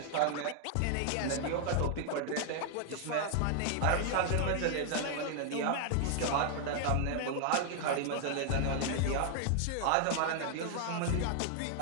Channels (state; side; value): different; both; correlation 0.00